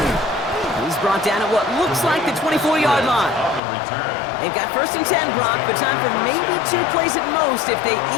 He's brought down at what looks like the 24-yard line. They've got 1st and 10, Brock, but time for maybe 2 plays at most if they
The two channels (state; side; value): drops out; right; at 3.6 s